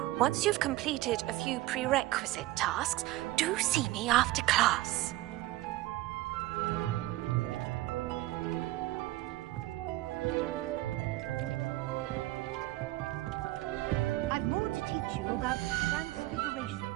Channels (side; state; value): left; quieter; 17.6 dB